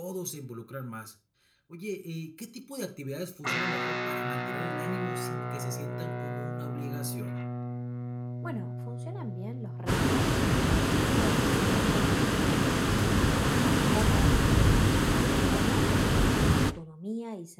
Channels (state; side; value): identical; both; correlation 1.00